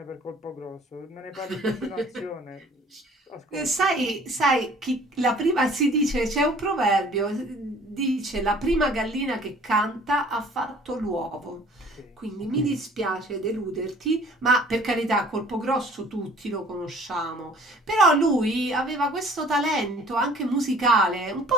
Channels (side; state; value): both; normal; correlation 0.52